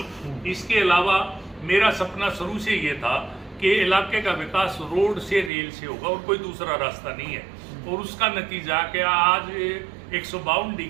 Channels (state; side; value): drops out; left; at 5.5 s